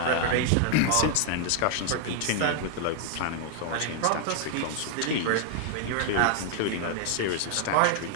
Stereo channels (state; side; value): different; both; correlation 0.00